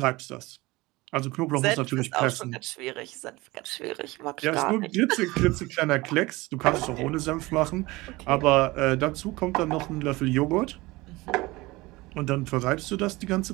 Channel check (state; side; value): quieter; left; 21.3 dB